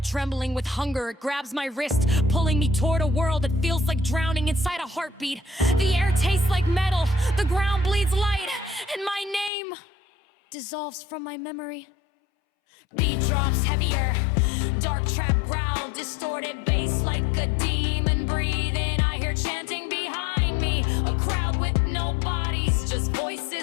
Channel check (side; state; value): right; drops out; at 9.5 s